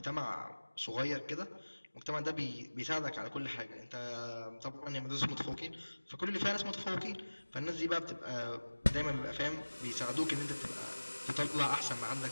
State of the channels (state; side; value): inverted; both; correlation -1.00